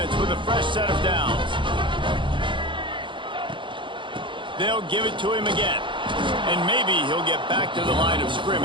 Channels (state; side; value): late; left; 0.24 ms